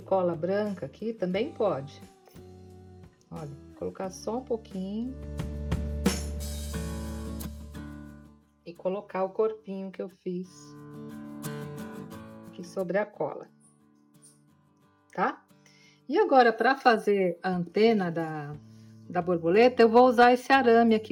branca aqui, também pode. Olha, colocar só um pouquinho. E colocar o corpinho que eu fiz aqui sobre a cola. Tá? E agora, para fazer a antena da borboleta, eu vou usar esse arame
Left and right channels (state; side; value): identical; both; correlation 1.00